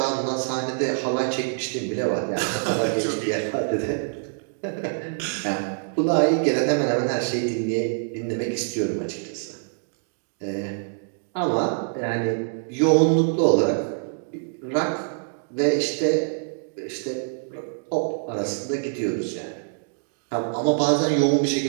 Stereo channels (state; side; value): silent; left; digital silence